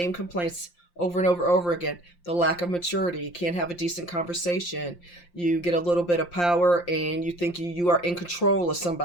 complaints over and over again. The lack of maturity, can't have a decent conversation, you get a little bit of power and you think you are in control of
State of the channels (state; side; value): late; right; 5.7 ms